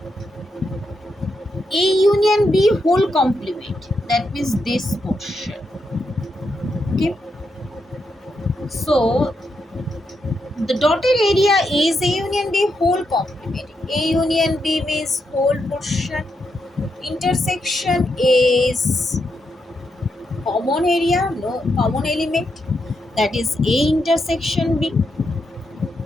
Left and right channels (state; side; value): normal; both; correlation 0.83